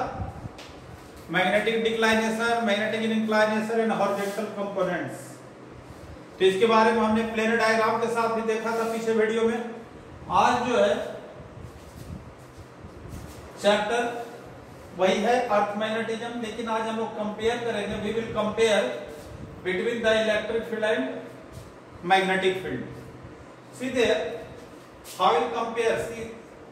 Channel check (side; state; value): both; identical; correlation 1.00